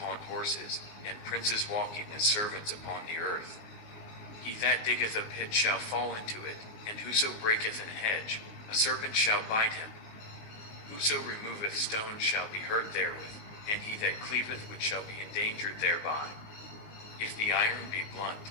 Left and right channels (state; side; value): late; right; 19 ms